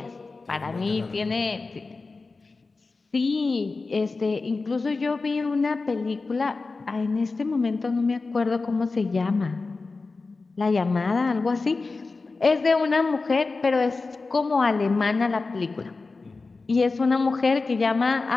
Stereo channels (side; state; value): right; quieter; 3.9 dB